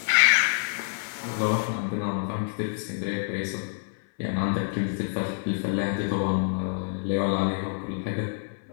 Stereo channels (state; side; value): silent; right; 60 dB below the other